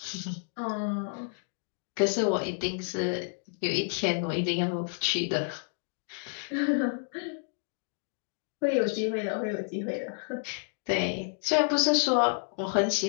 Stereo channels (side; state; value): right; silent; digital silence